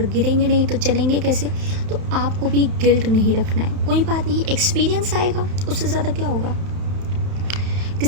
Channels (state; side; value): late; left; 31 ms